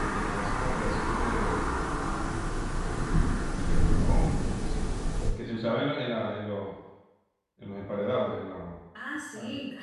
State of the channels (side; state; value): both; identical; correlation 1.00